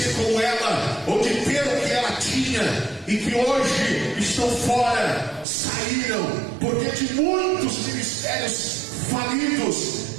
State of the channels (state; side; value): drops out; left; at 5.5 s